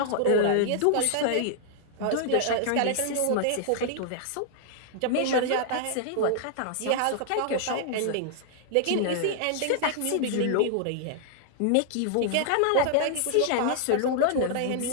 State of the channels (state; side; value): different; both; correlation -0.01